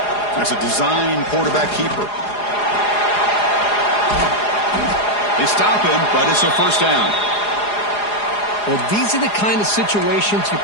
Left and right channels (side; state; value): right; late; 4.8 ms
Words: That's a design quarterback keeper. They stop him, but it's a first down. Well, these are the kind of situations you